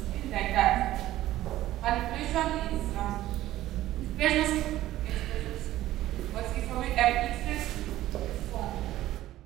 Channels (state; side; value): quieter; left; 14.8 dB